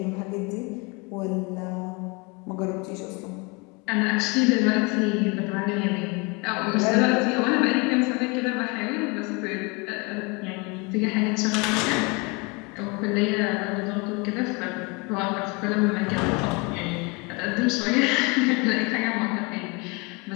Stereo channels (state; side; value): quieter; right; 28.5 dB